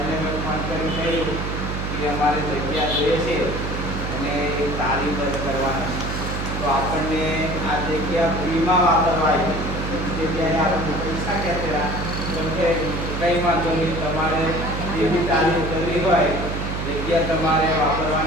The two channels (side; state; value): right; noise; hum, 3 dB below the sound